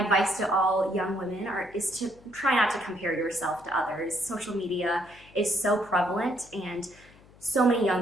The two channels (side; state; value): left; noise; hum, 25 dB below the sound